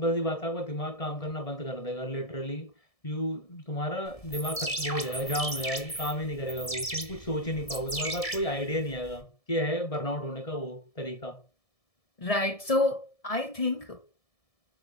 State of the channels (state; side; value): late; right; 1.7 ms